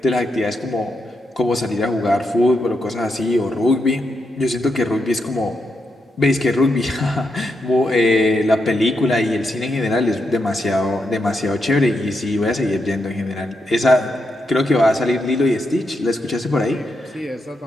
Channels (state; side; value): normal; both; correlation 0.83